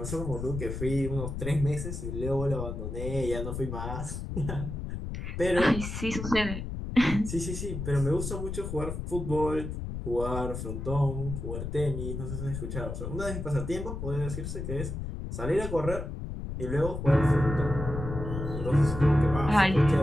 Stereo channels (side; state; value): left; noise; rumble, 5 dB below the sound